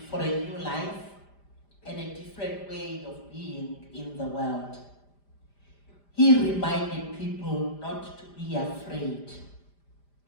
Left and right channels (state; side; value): late; right; 5.0 ms